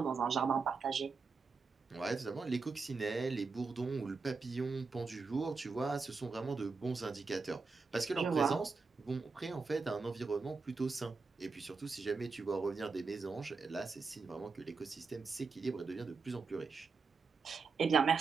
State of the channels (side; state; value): left; quieter; 4.5 dB